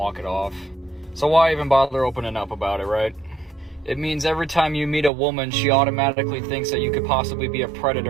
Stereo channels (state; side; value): drops out; left; at 5.1 s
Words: it off. So why even bother opening up about it, right? It means every time you meet a woman, she automatically thinks that you could possibly be a